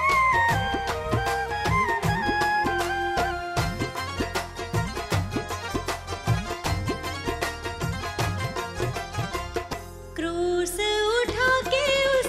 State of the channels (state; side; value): identical; both; correlation 1.00